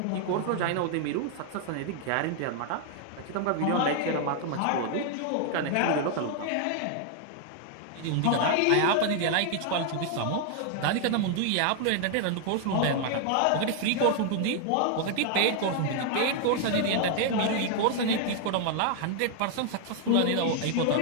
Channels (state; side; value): different; both; correlation 0.00